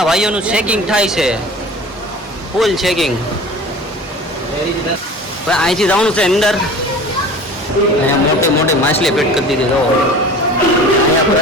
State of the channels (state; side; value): normal; both; correlation 0.40